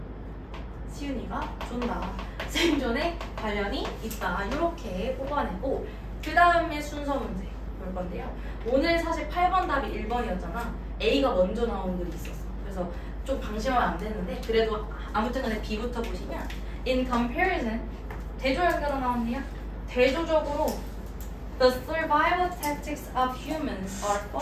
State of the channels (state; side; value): identical; both; correlation 1.00